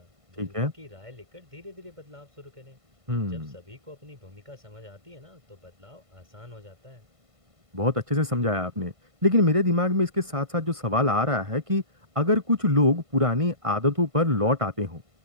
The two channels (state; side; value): late; left; 1.5 ms